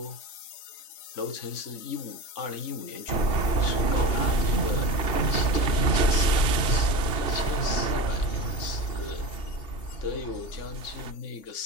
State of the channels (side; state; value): right; late; 2.8 ms